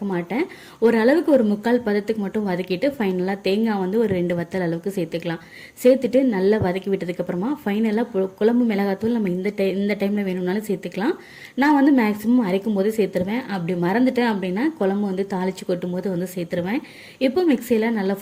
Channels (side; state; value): both; identical; correlation 1.00